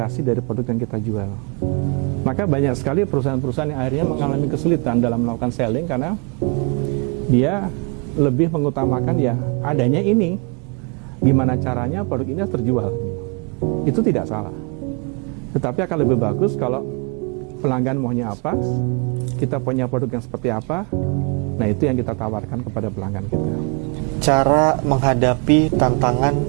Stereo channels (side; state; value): left; quieter; 33.0 dB